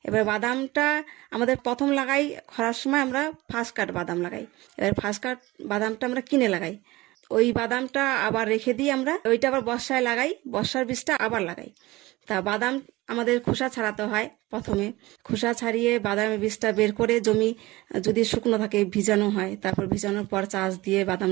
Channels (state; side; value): quieter; left; 20.0 dB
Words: এবার বাদামটা আমাদের প্রথম লাগাই খরার সময়, আমরা ফার্স্ট কাট বাদাম লাগাই। এবার ফার্স্ট কাট বাদামটা আমরা কিনে লাগাই। ওই বাদামটা আবার রেখে দিই আমরা, ওইটা আবার বর্ষায় লাগাই, বর্ষার বীজটা আবার লাগাই। তা বাদাম আমাদের খোসা ছাড়াতে হয়। প্রথমে খোসা ছাড়িয়ে বাদামের বীজটা বের করে জমি যদি শুকনো থাকে ভিজানো হয়, তারপর ভিজানোর পর চাষ দিয়ে বাদাম